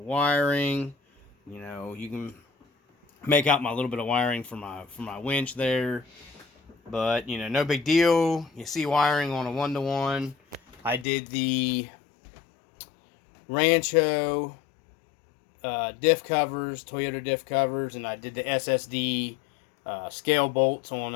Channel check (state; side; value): drops out; right; at 11.1 s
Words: wiring. You know, you can make out my little bit of wiring for my winch there, but you know, no big deal. You see wiring on a 1-to-1. I did the Rancho diff covers, Toyota diff covers, and I did the SSD scale bolts on